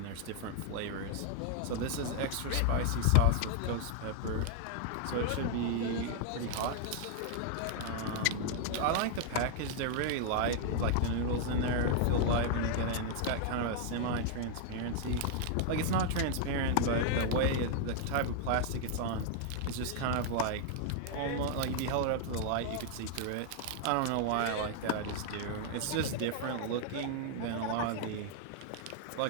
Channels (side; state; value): both; different; correlation 0.00